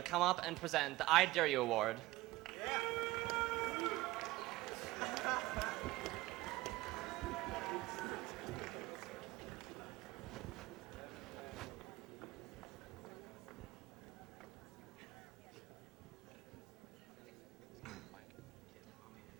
come up and present the I Dare You Award.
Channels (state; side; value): quieter; left; 18.6 dB